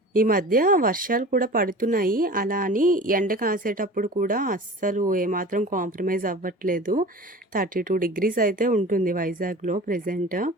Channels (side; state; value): both; normal; correlation 0.38